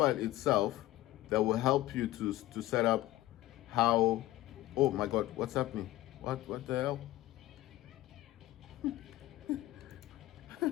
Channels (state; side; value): quieter; right; 16.0 dB